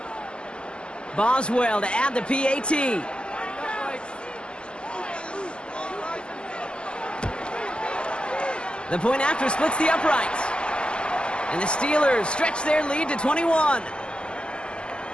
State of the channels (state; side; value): late; right; 0.050 ms